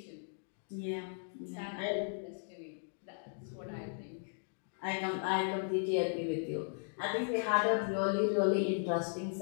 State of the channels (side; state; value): right; silent; digital silence